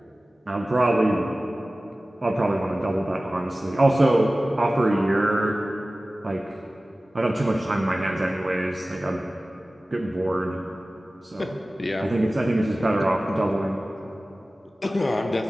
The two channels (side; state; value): both; normal; correlation 0.97